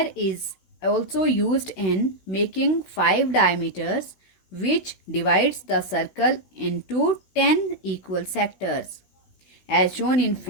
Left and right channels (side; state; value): right; late; 16 ms